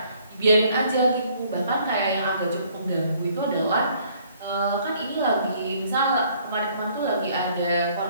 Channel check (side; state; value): both; inverted; correlation -0.62